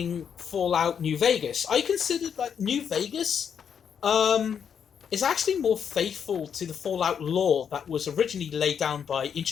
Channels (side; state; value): right; quieter; 7.6 dB